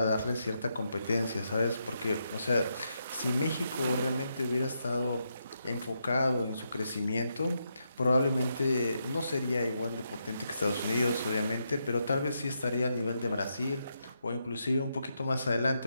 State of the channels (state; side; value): inverted; both; correlation -0.82